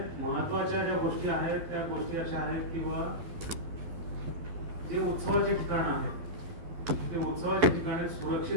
महत्त्वाच्या ज्या गोष्टी आहेत त्या गोष्टी अशा आहेत की जे उत्सवाचे ठिकाण आहेत ते उत्सवाच्या ठिकाणी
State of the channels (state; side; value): late; left; 12 ms